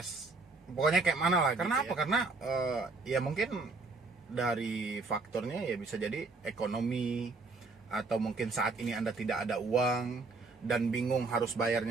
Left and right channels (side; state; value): left; quieter; 3.7 dB